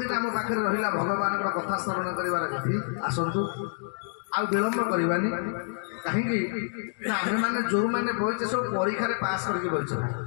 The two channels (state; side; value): silent; right; digital silence